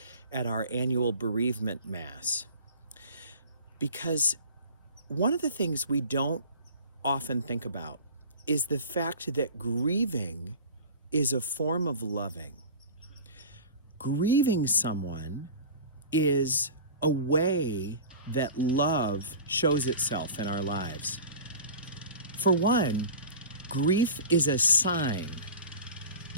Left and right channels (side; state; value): both; inverted; correlation -0.37